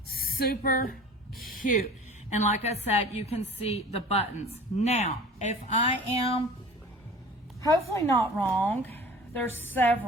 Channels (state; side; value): normal; both; correlation 0.42